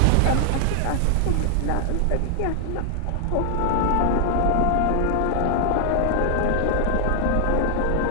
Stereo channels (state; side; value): different; both; correlation 0.00